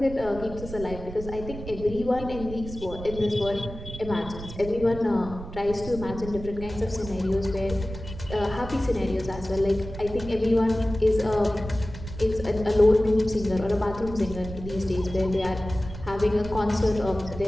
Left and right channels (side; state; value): right; noise; rumble, 11 dB below the sound